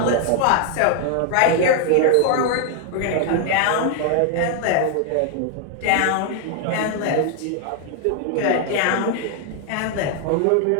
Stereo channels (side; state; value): both; different; correlation 0.00